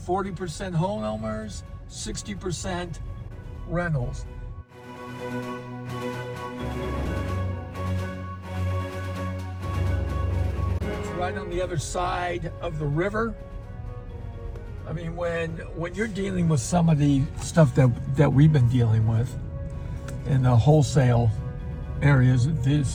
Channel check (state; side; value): identical; both; correlation 1.00